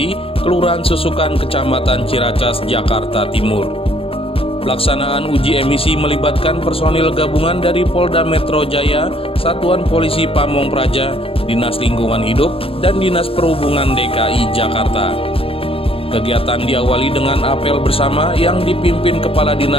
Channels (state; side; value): late; right; 0.27 ms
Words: Kelurahan Susukan, Kecamatan Ciracas, Jakarta Timur. Pelaksanaan uji emisi melibatkan personil gabungan dari Polda Metro Jaya, Satuan Polisi Pamong Praja, Dinas Lingkungan Hidup, dan Dinas Perhubungan DKI Jakarta. Kegiatan diawali dengan apel bersama yang dipimpin Kepala